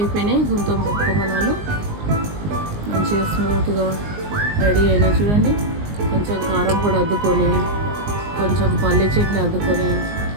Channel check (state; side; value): late; left; 19 ms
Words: గుంత పొంగనాలు, మంచిగా స్మూత్గా రెడీ అయినాయి. చూడండి కొంచెం కారం పొడి అద్దుకొని, కొంచెం పల్లి చట్నీ అద్దుకొని